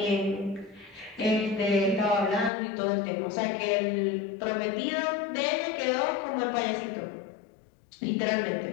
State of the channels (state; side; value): drops out; right; at 2.5 s